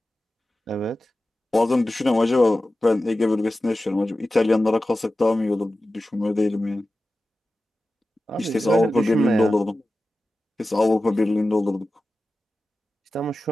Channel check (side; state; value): both; normal; correlation 0.94